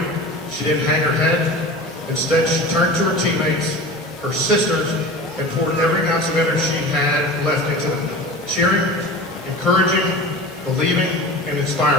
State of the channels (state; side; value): normal; both; correlation 0.34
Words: she didn't hang her head. Instead, she turned to her teammates, her sisters, and poured every ounce of energy she had left into them, cheering, encouraging, believing, and